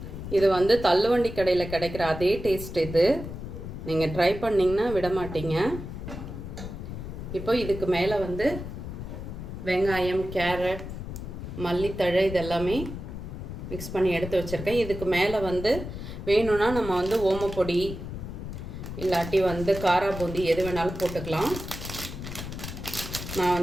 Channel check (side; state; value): left; noise; rumble, 8 dB below the sound